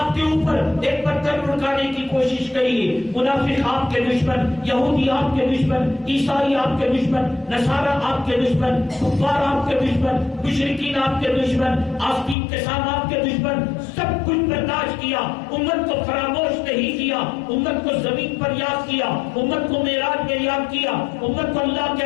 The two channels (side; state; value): right; drops out; at 12.4 s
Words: کے اوپر ایک پتھر لڑکانے کی کوشش گئی۔ منافق آپ کے دشمن، یہودی آپ کے دشمن، عیسائی آپ کے دشمن، نصارہ آپ کے دشمن، کفار آپ کے دشمن، مشرکین آپ کے دشمن، آستین کے ساتھ آپ کے دشمن، سب کچھ برداشت کیا، امت کو فراموش نہیں کیا، امت کو زمین پر یاد کیا، امت کو معراج میں یاد کیا، امت کو اللہ کے